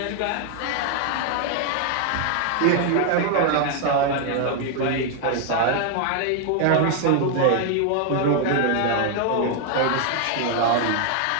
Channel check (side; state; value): both; different; correlation 0.00